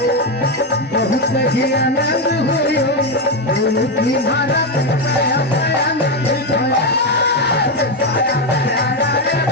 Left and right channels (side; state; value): both; normal; correlation 0.08